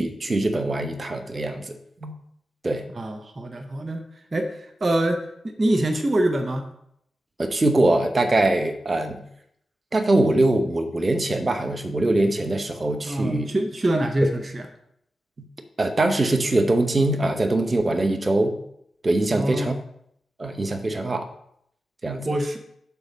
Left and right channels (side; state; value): both; normal; correlation 0.93